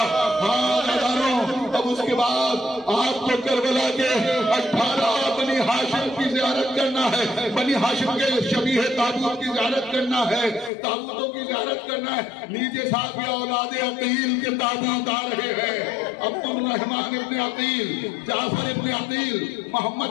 ہاں نظاروں، اب اس کے بعد آپ کو کربلا کے 18 بنی ہاشم کی زیارت کرنا ہے، بنی ہاشم کے شبیہ تابوت کی زیارت کرنا ہے، تابوتوں کی زیارت کرنا ہے۔ لیجئے صاحب یا اولاد عقیل کے تابوت آ رہے ہیں، عبد الرحمن ابن عقیل، جعفر ابن عقیل،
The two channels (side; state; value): right; drops out; at 10.7 s